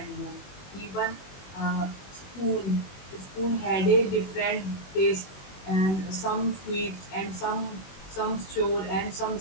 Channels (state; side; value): late; right; 21 ms